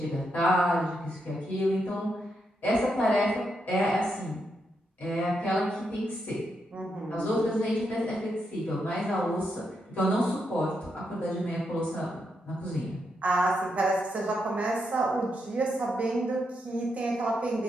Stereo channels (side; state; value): both; normal; correlation 0.82